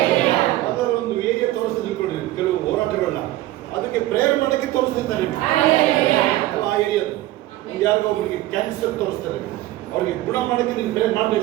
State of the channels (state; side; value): quieter; left; 16.1 dB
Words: ಅದರ ಒಂದು ಏರಿಯಾ ತೋರಿಸ್ತಾ ತಿಳ್ಕೊಂಡ್ರಿ ಕೆಲವು ಹೋರಾಟಗಳನ್ನ, ಅದಕ್ಕೆ ಪ್ರೇಯರ್ ಮಾಡಕ್ಕೆ ತೋರಿಸ್ತಿರ್ತಾರೆ ಆ ಏರಿಯಾದ. ಒಂದು ಯಾರಿಗೋ ಒಬ್ಬರಿಗೆ ಕ್ಯಾನ್ಸರ್ ತೋರಿಸ್ತಾರೆ, ಅವ್ರಿಗೆ ಗುಣ ಮಾಡಕ್ಕೆ ನೀನು ಪ್ರೇಯರ್